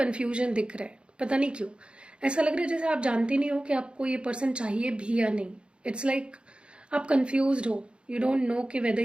दिख रहा है, पता नहीं क्यों। ऐसा लग रहा है जैसे आप जानते नहीं हो कि आपको ये पर्सन चाहिए भी या नहीं। इट्स लाइक आप कंफ्यूज हो, यू डोंट नो कि whether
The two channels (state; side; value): late; left; 0.056 ms